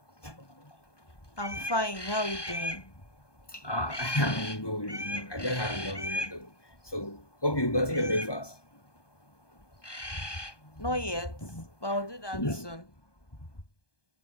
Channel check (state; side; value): late; right; 1.2 ms